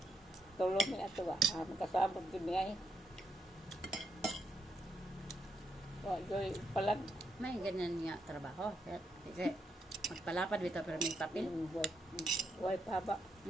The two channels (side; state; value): both; normal; correlation 0.79